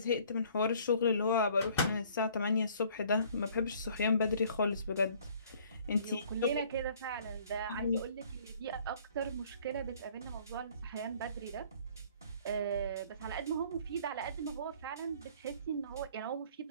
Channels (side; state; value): both; inverted; correlation -0.56